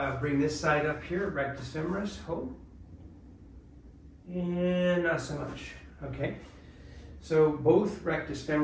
bring this side up here, rectus femoris, hold, and not so much, okay? So both rectus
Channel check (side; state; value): both; identical; correlation 1.00